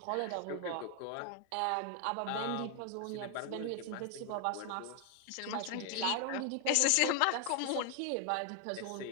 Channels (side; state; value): both; different; correlation 0.00